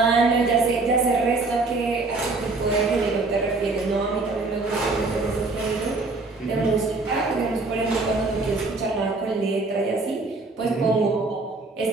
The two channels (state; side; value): quieter; left; 3.5 dB